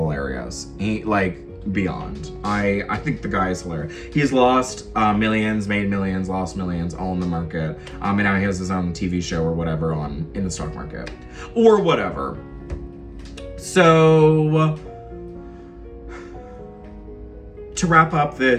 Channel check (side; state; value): both; identical; correlation 1.00